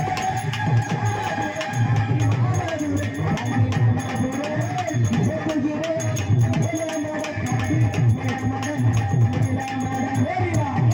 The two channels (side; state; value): both; identical; correlation 1.00